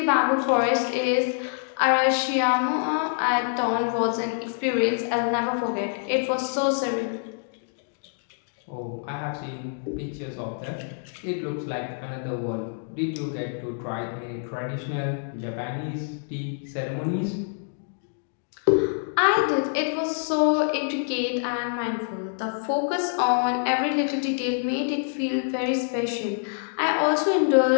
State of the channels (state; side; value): silent; right; digital silence